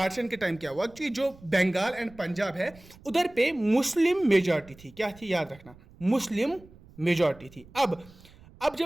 के टाइम क्या हुआ कि जो बंगाल एंड पंजाब है उधर पे मुस्लिम मेजॉरिटी थी। क्या थी? याद रखना, मुस्लिम मेजॉरिटी थी। अब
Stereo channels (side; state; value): right; noise; rumble, 23 dB below the sound